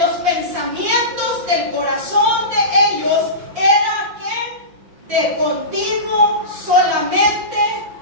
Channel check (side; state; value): left; late; 5.7 ms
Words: los pensamientos del corazón de ellos era que de continuo solamente